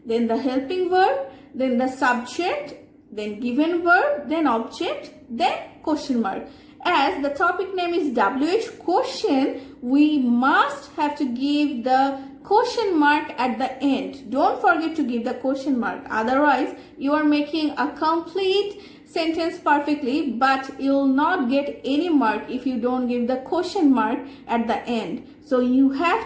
then the helping verb, then the subject, then given verb, then object, then question mark. as the topic name is WH question, we must have to give the question mark at the end. Don't forget to give the question mark. Otherwise, you are making a complete sentence perfectly, but you'll not get any mark if you don't give the question mark at the end. So you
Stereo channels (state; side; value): identical; both; correlation 1.00